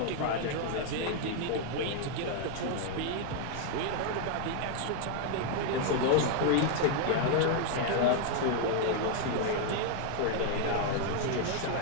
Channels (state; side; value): different; both; correlation 0.00